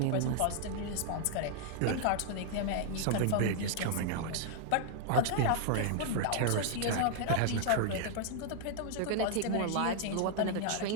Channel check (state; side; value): different; both; correlation 0.00